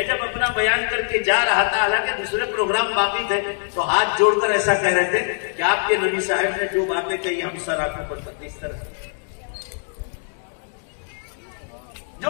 जब अपना बयान करके जा रहा था, हालांकि दूसरे प्रोग्राम बाकी थे, तो हाथ जोड़कर ऐसा कह रहे थे कि आपके नबी साहब ने जो बातें कही हम सर आंखों पर करते। इस तरह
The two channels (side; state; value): right; silent; 64 dB below the other